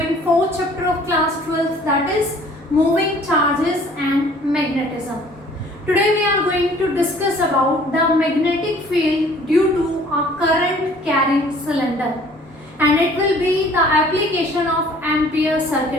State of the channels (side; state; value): both; normal; correlation 0.54